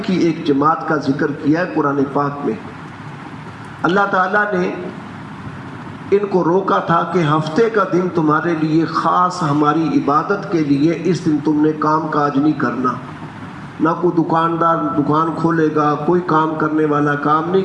کی ایک جماعت کا ذکر کیا ہے قرآن پاک میں۔ اللہ تعالیٰ نے ان کو روکا تھا کہ ہفتے کا دن تمہارے لیے خاص ہماری عبادت کے لیے، اس دن تم نے کام کاج نہیں کرنا، نہ کوئی دکاندار دکان کھولے گا، کوئی کام کرنے والا کام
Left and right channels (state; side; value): identical; both; correlation 1.00